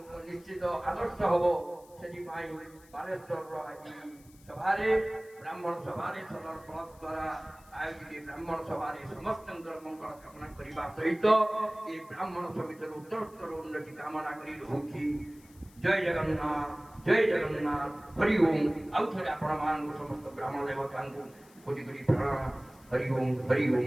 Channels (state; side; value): noise; left; hiss, 26 dB below the sound